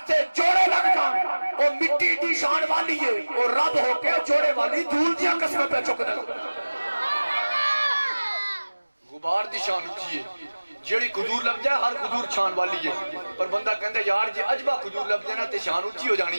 جوڑے لگ جان وہ مٹی دی شان والی ہے وہ رب ہو کے جوڑے والی دھول دیا قسمیں پہ چک دے غبار دی شان اچھی ہے جیڑی قدور لگ جائے ہر قدور شان والی ہے پر بندہ کہندے یار جی عجبہ قدور لگ جائے نا تے شان اچھی ہو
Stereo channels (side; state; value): both; inverted; correlation -1.00